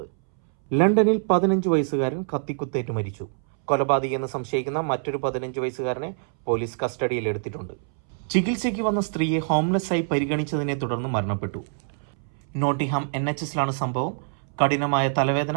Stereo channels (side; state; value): left; silent; 62 dB below the other